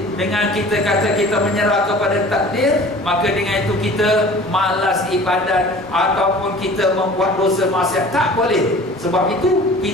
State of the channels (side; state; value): both; normal; correlation 0.44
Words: dengan kita kata kita menyerah kepada takdir, maka dengan itu kita malas ibadat ataupun kita membuat dosa maksiat. Tak boleh. Sebab itu